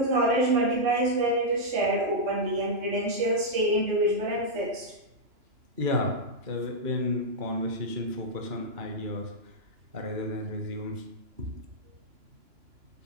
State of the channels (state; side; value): late; left; 2.9 ms